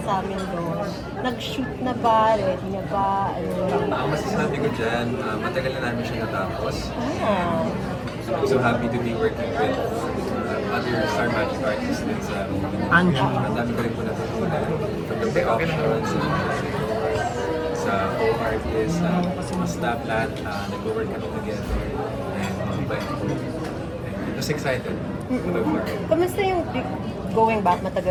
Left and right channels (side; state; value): both; identical; correlation 1.00